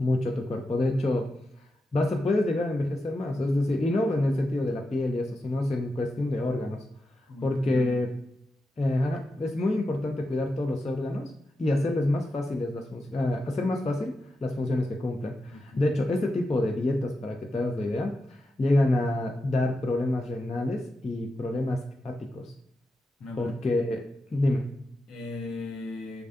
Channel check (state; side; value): normal; both; correlation 0.89